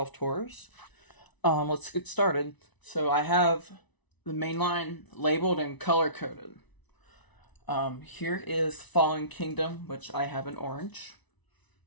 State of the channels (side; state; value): right; late; 1.0 ms